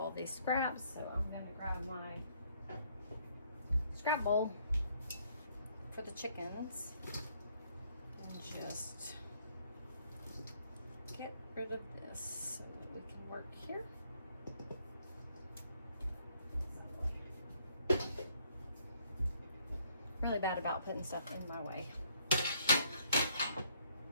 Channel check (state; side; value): inverted; both; correlation -0.67